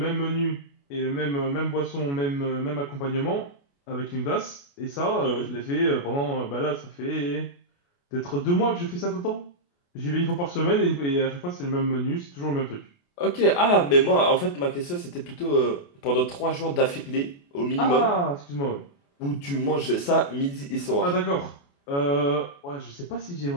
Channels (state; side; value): late; right; 28 ms